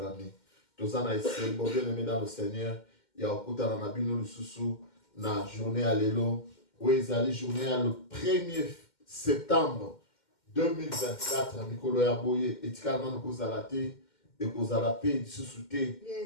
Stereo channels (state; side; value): late; right; 2.1 ms